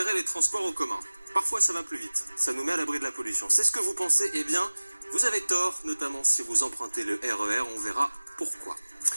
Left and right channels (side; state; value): both; inverted; correlation -1.00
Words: les transports en commun. Parfois ça va plus vite, ça nous met à l'abri de la pollution. C'est ce que vous pensez, eh bien, vous avez tort, notamment si vous empruntez le RER, on verra pourquoi.